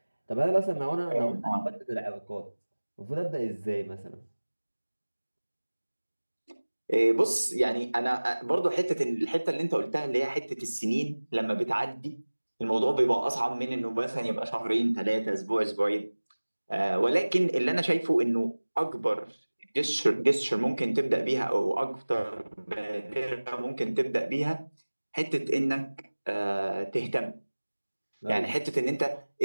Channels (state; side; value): inverted; both; correlation -1.00